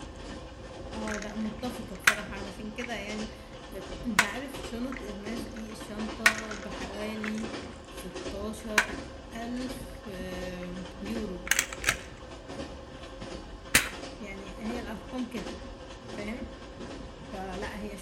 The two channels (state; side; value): identical; both; correlation 1.00